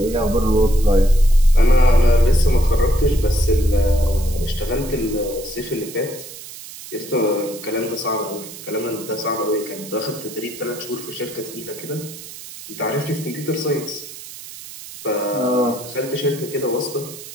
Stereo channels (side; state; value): right; noise; hiss, 14 dB below the sound